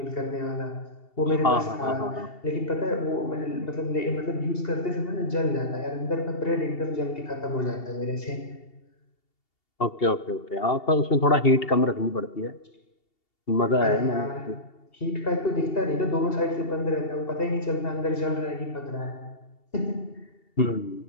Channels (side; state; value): right; late; 2.7 ms